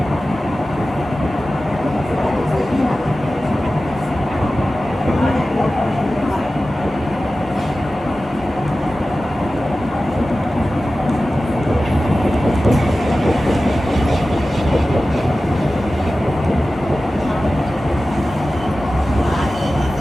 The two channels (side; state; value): both; normal; correlation 0.95